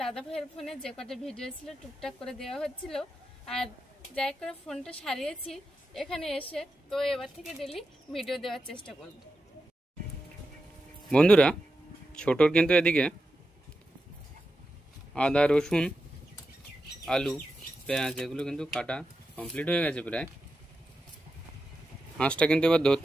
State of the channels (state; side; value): normal; both; correlation 0.89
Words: দাদা ভাইয়ের ফোনে যে কটা ভিডিও ছিল টুকটাক করে দেওয়া হচ্ছিল, আর যাই করে ফোনটা সারিয়েছি এখানে এসে। তো এবার থেকে ডেলি ভিডিও দেওয়ার চেষ্টা করব। বন্ধুরা, ছোটর কিন্তু এদিকে আদা, রসুন, আলু, পেঁয়াজ এগুলো কিন্তু কাটা কমপ্লিট হয়ে গেছে প্রায়। হাঁসটা কিন্তু এবার